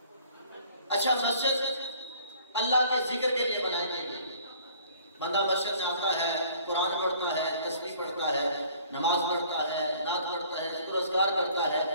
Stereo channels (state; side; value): inverted; both; correlation -0.54